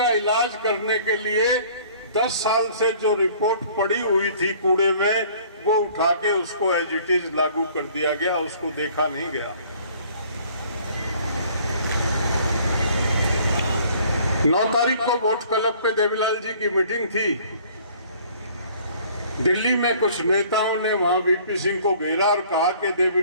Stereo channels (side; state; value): both; inverted; correlation -0.54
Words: इलाज करने के लिए 10 साल से जो रिपोर्ट पड़ी हुई थी कूड़े में, वो उठा के उसको एज इट इज लागू कर दिया गया, उसको देखा नहीं गया। 9 तारीख को वोट क्लब पे देवीलाल जी की मीटिंग थी। दिल्ली में कुछ नेताओं ने वहां वीपी सिंह को घेरा और कहा कि